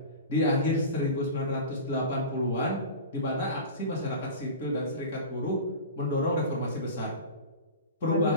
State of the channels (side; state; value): both; inverted; correlation -0.31